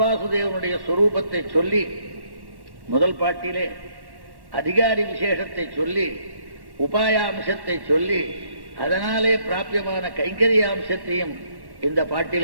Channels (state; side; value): late; left; 1.1 ms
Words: சொரூபத்தை சொல்லி முதல் பாட்டிலே அதிகாரி விசேஷத்தை சொல்லி உபாயாம்சத்தை சொல்லி அதனாலே பிராபியமான கைங்கரியாம்சத்தையும் இந்த